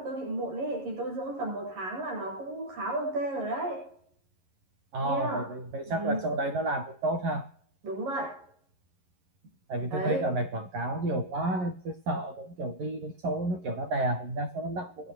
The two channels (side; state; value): left; late; 11 ms